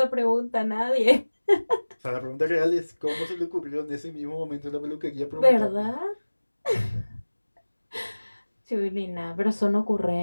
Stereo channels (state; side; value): inverted; both; correlation -1.00